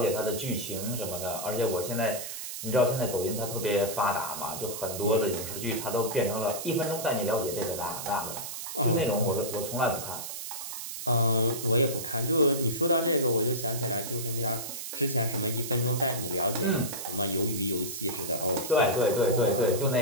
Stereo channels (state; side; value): noise; right; hiss, 7 dB below the sound